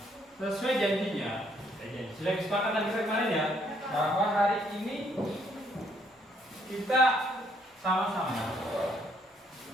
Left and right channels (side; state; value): both; normal; correlation 0.69